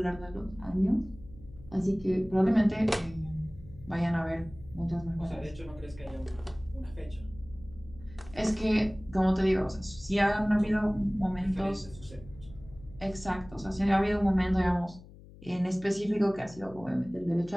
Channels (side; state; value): left; noise; hum, 19 dB below the sound